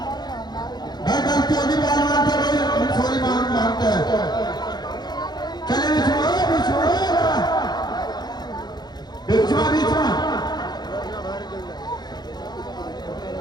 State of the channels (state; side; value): late; right; 0.20 ms